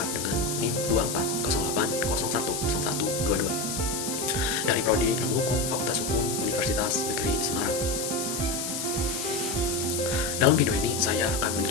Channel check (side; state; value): left; noise; hiss, 4 dB below the sound